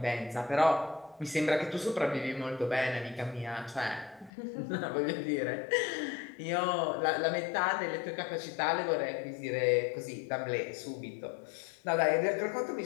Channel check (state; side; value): drops out; right; at 4.3 s